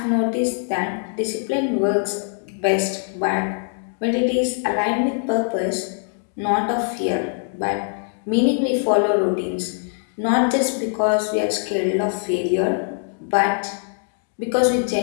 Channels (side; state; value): right; silent; 64 dB below the other